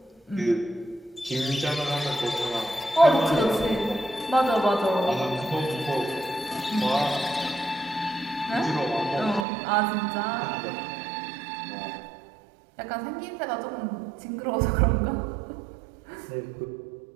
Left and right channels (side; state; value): left; drops out; at 9.5 s